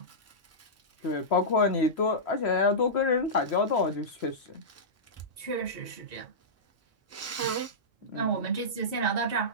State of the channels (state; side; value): normal; both; correlation -0.15